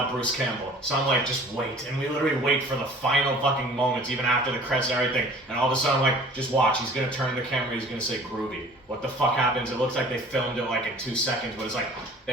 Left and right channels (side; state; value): both; normal; correlation 0.48